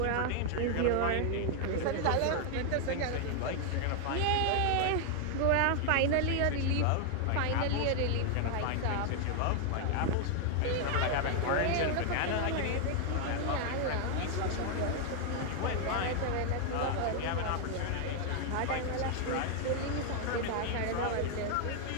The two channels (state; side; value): different; both; correlation 0.00